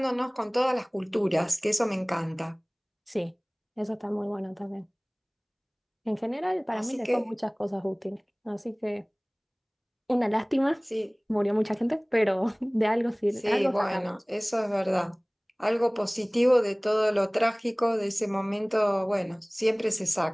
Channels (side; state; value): both; identical; correlation 1.00